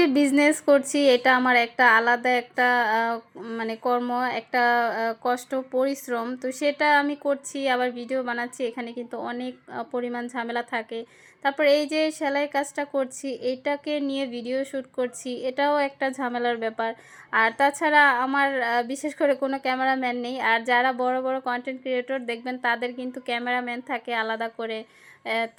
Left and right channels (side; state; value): both; identical; correlation 1.00